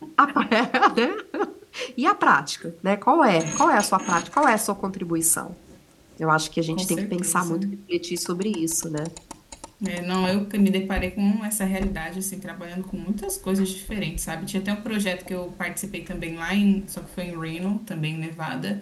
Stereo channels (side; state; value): both; identical; correlation 1.00